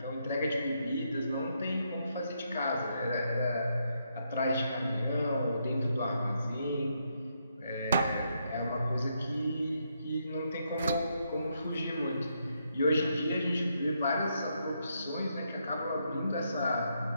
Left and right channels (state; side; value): inverted; both; correlation -0.78